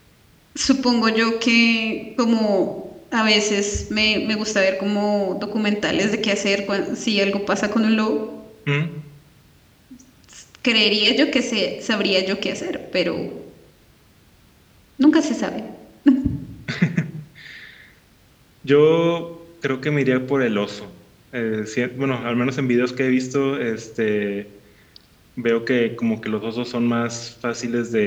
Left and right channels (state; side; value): identical; both; correlation 1.00